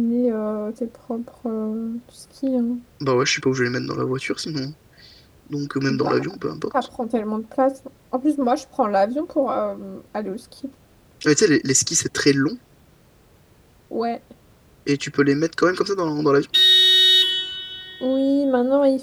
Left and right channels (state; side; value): identical; both; correlation 1.00